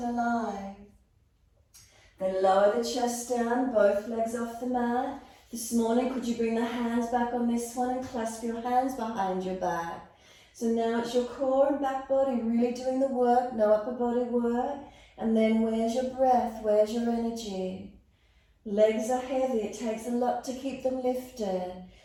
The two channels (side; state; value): both; identical; correlation 1.00